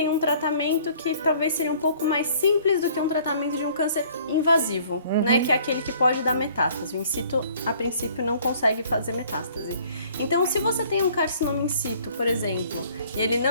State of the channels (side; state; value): both; inverted; correlation -0.56